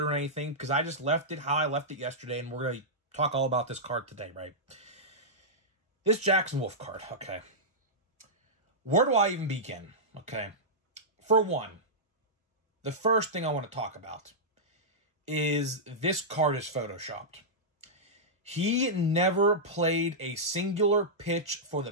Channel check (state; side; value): normal; both; correlation -0.12